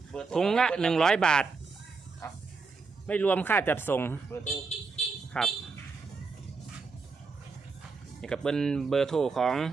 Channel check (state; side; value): quieter; left; 4.5 dB